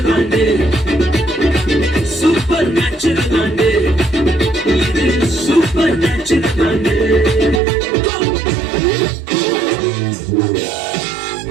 ஆண்டு. சூப்பர் நேச்சுரல் ஆண்டு இது, சூப்பர் நேச்சுரல் ஆண்டு.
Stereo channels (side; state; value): left; drops out; at 7.6 s